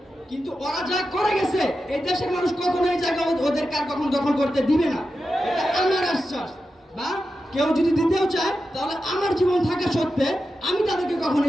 কিন্তু ওরা যা করে গেছে এই দেশের মানুষ কখনো এই জায়গা ওদের কার কখন দখল করতে দিবে না, এটা আমার আশ্বাস। বা কেউ যদি দিতেও চায় তাহলে আমার জীবন থাকা সত্ত্বে আমি তাদেরকে কখনো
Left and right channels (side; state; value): both; normal; correlation 0.90